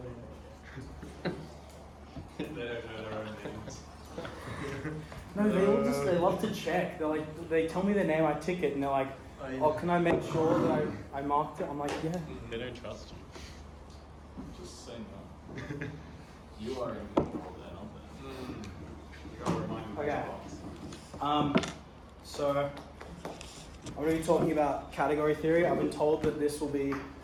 it. They don't know their own names. No, they love to check. They tell me their name, I tick it, and they're like, oh, can I make sure that I marked it? I'm like, yeah. They don't trust you. Just say no. You are in control then, aren't you gotta remind me. Okay. So I'm going to be talking about category theory. I've been told that this will be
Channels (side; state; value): both; identical; correlation 1.00